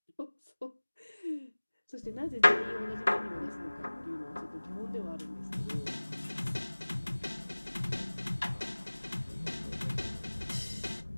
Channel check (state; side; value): inverted; both; correlation -1.00